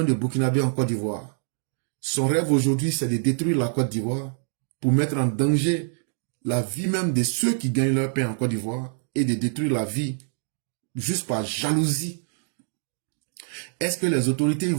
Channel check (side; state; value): left; silent; 56 dB below the other